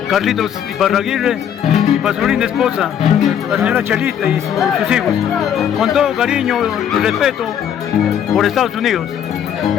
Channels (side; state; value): right; quieter; 9.2 dB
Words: Carlitos Iparraguirre y para su linda esposa, la señora Chelita y sus hijos. Con todo cariño y respeto por Estados Unidos.